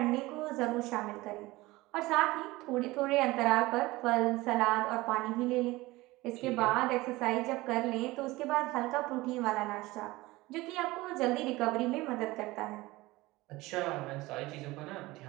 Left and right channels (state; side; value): quieter; left; 20.0 dB